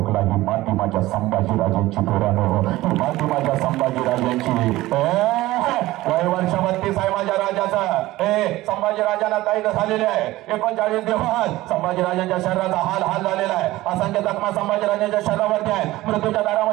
ही माती माझ्या संभाजीराजांची पोरानो, ही माती माझ्या संभाजीराजांची. वय वर्ष 32 आहे माझ्या राजाचं. संभाजीराजांना कैद झालेले आहे 39 दिवस. संभाजीराजांच्या शरीराचा हाल झालेला आहे. असंख्य जखमा संभाजीराजांच्या शरीरावरती आहेत. मृत्यूच्या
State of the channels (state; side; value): quieter; left; 17.5 dB